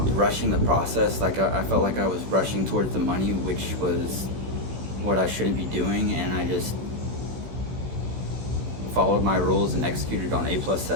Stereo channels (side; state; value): left; late; 16 ms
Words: rushing the process. Like I felt like I was rushing towards the money, which was what I shouldn't be doing, and I just followed my rules and executed on A+